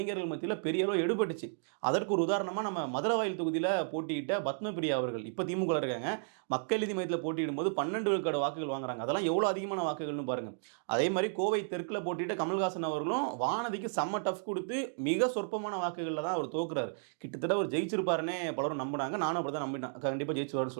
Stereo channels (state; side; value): silent; left; digital silence